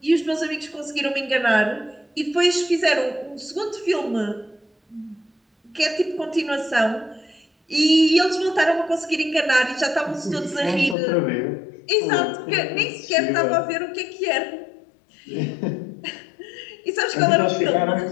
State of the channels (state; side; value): drops out; right; at 11.0 s